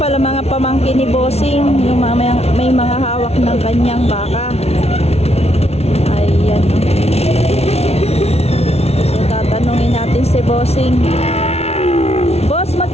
mga pamangkin ni Bossing, yung may mga hawak ng kanyang baka. Ayan. So tatanungin natin si Bossing. Boss,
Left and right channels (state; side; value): late; right; 0.31 ms